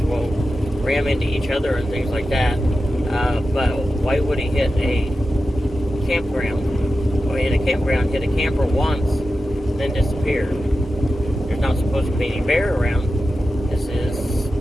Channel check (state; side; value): normal; both; correlation 0.92